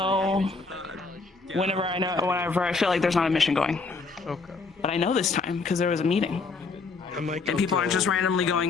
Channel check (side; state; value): right; quieter; 4.2 dB